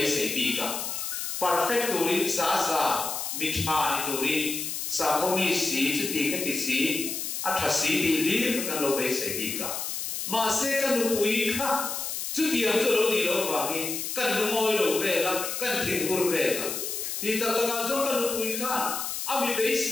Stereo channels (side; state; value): left; noise; hiss, 4 dB below the sound